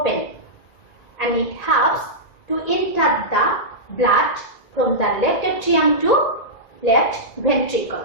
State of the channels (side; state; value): right; late; 2.0 ms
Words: and it helps to enter the blood from the left atrium to left